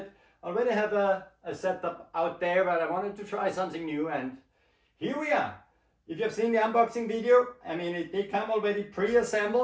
I already have a setup out there, but I wanted to try something new, and here we are. If you've seen the unboxing video, I mean, they come already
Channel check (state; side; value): identical; both; correlation 1.00